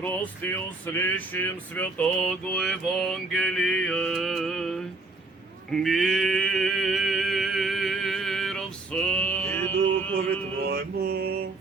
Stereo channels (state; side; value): quieter; left; 3.3 dB